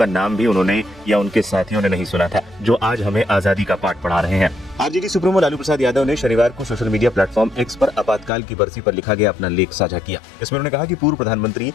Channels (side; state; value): right; drops out; at 8.3 s